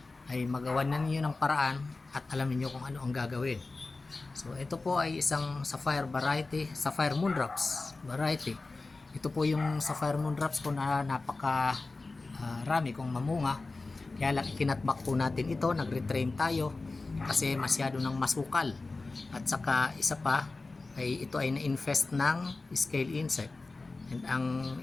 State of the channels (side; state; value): right; quieter; 3.5 dB